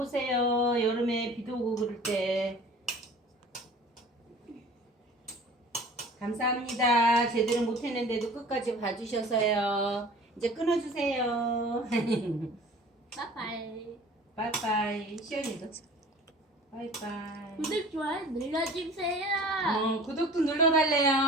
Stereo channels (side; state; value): both; normal; correlation 0.44